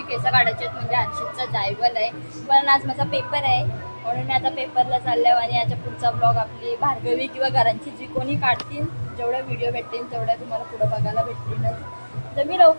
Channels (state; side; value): inverted; both; correlation -1.00